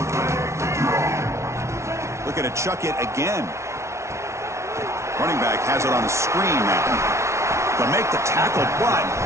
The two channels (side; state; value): left; late; 0.13 ms